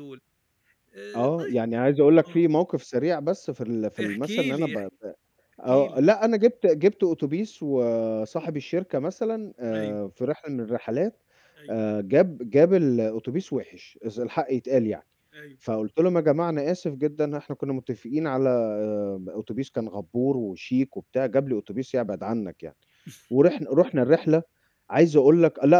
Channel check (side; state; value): both; identical; correlation 1.00